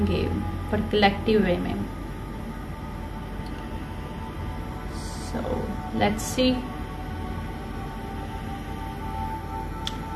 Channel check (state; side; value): identical; both; correlation 1.00